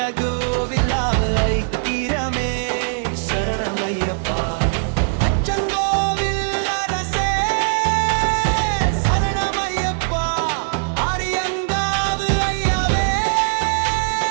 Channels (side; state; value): left; silent; 55 dB below the other